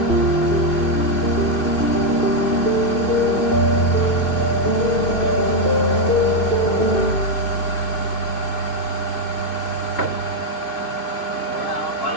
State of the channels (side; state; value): right; late; 2.4 ms